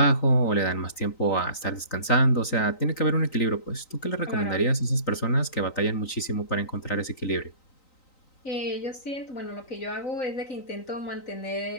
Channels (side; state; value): right; late; 3.9 ms